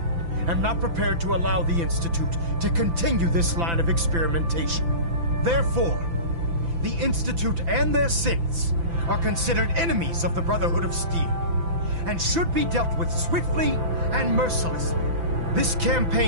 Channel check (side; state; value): left; late; 5.9 ms